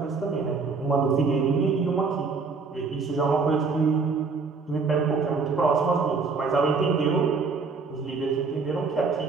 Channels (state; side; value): quieter; left; 4.6 dB